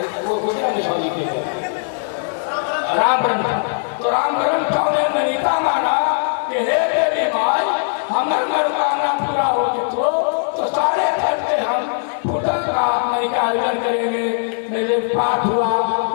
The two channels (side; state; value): right; silent; digital silence